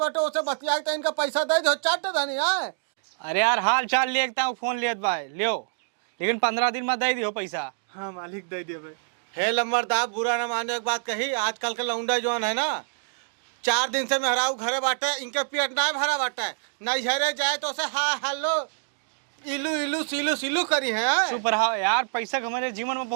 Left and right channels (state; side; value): silent; left; digital silence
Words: उसे बतिया के इनका पैसा दे दो। चाट धनी है। अरे यार हाल चाल लेता हूँ, फोन लेत बा लियो, लेकिन 15 दिन में दे दियो पैसा। हाँ मालिक दे दिए बे। हे लंबरदार, बुरा न माने एक बात कही। आजकल के लौंडा जौन है ना, 4 दिन से मेहरारू घरे बाटे, इनके पेट ना भरा बाटे, नहीं हरे जाए तो उसे हाँ हेलो इलू इलू सिलू सिलू करी है। चुप रहो यार, पैसा हमारे जीवन में